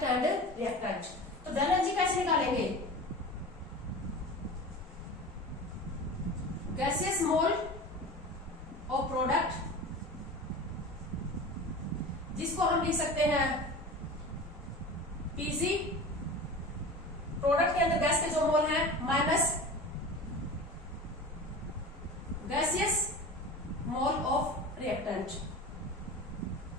and reactant. तो डेल एन जी कैसे निकालेंगे, गैसेस मोल ऑफ प्रोडक्ट, जिसको हम लिख सकते हैं पीसी, प्रोडक्ट के अंदर गैस के जो मोल है, minus gaseous mole of reactant,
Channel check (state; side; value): normal; both; correlation 0.34